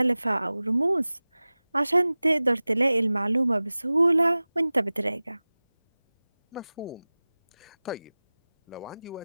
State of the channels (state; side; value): inverted; both; correlation -0.98